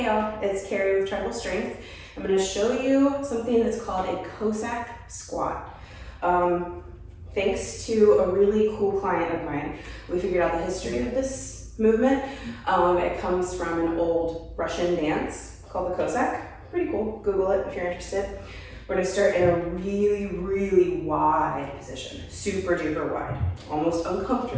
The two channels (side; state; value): both; identical; correlation 1.00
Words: y'all, it's Carrie with Tribal Strength. I'm going to show you something that's called a Cossack Squat. Thanks to a really cool client of mine, we figured out the history of this movement. It comes from an old Russian dance called the Cossack. Pretty cool, Google it if you're interested. We're going to start in a really wide position, super duper wide, almost